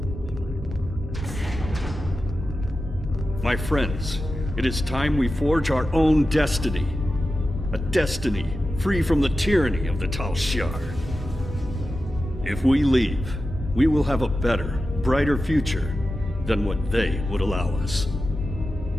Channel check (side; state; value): both; normal; correlation 0.92